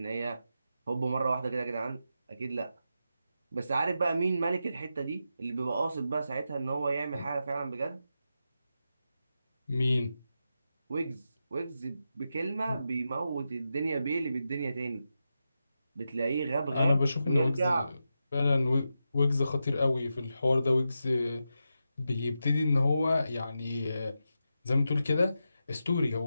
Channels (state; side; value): inverted; both; correlation -0.88